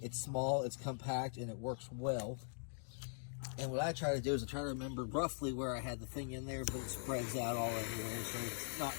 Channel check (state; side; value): silent; right; digital silence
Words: It's small, it's compact, and it works well. And what I try to do is I try to remember roughly where I had the thing in there, but it spreads out all everywhere, so it's not